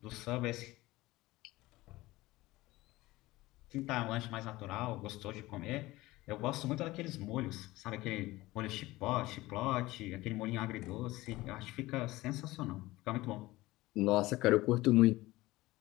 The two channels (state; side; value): quieter; right; 18.9 dB